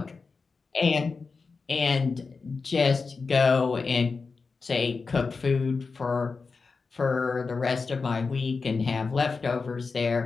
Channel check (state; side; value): quieter; right; 4.6 dB